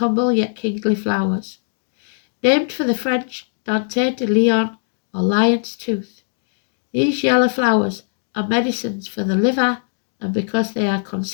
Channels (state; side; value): silent; right; digital silence